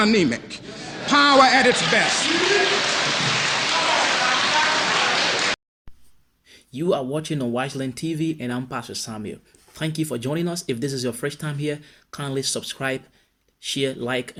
Power at its best. You are watching on Wiseland TV, and I'm Pastor Samuel. Thank you for joining us. If this is your first time here, kindly subscribe, share, like,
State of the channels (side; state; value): both; identical; correlation 1.00